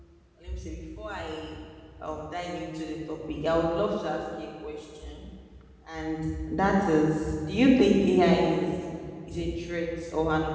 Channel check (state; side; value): identical; both; correlation 1.00